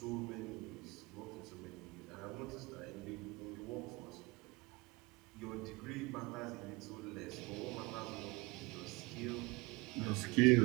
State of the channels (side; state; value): left; quieter; 24.8 dB